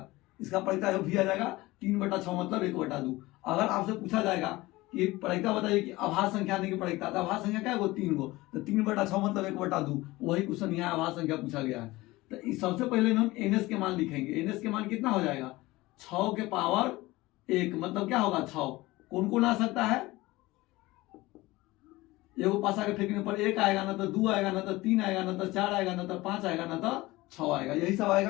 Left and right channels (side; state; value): right; quieter; 19.8 dB